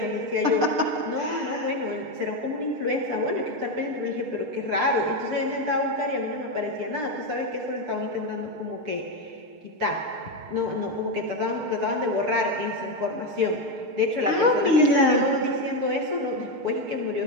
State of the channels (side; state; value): left; late; 6.6 ms